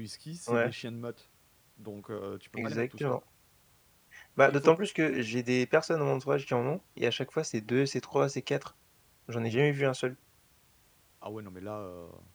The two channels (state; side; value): identical; both; correlation 1.00